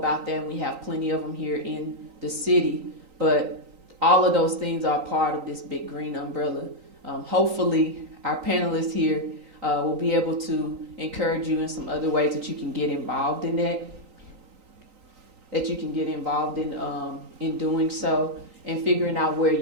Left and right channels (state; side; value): late; left; 3.9 ms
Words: that, and we have plenty of them here in the city, but all of those things are part of this big green umbrella. Hopefully our panelists here will be able to encourage you in some other ways that you can get involved in that you can get involved in doing so, and figuring out where